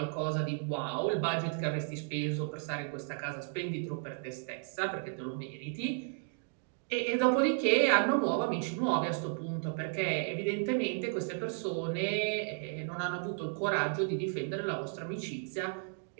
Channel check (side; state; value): left; silent; 55 dB below the other